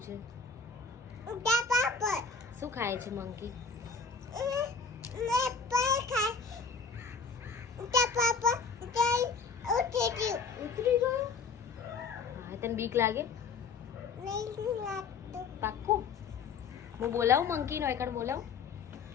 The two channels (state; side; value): quieter; right; 5.1 dB